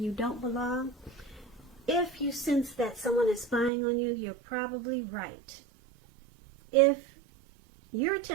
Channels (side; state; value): left; drops out; at 3.7 s